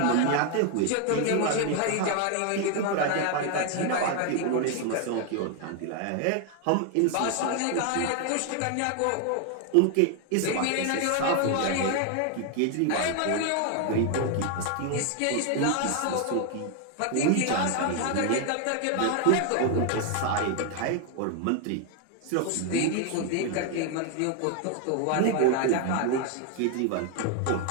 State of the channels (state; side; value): different; both; correlation 0.01